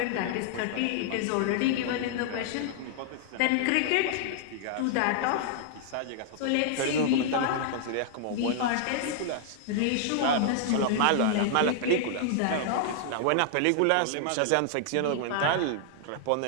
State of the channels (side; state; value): both; different; correlation 0.00